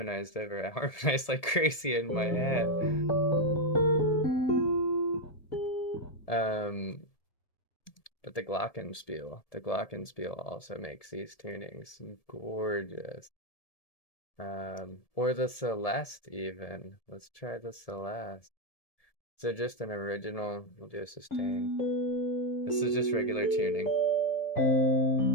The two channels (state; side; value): late; right; 1.7 ms